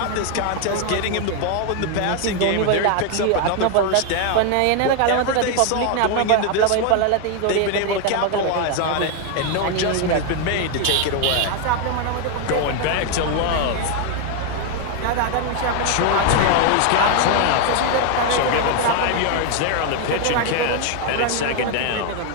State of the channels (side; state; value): both; different; correlation 0.01